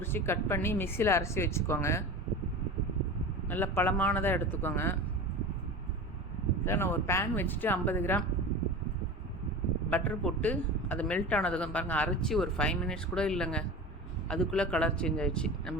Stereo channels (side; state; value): both; normal; correlation 0.32